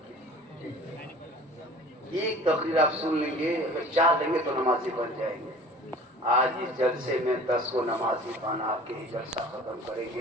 एक तकरीर आप सुन लेंगे, अगर चाह लेंगे तो नमाजी बन जाएंगे। आज इस जलसे में 10 को नमाजी पाना आपके ही जलसा खत्म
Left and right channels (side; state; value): both; normal; correlation 0.45